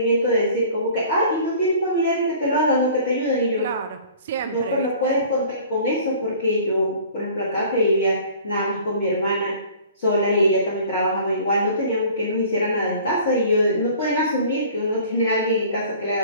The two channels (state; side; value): inverted; both; correlation -0.48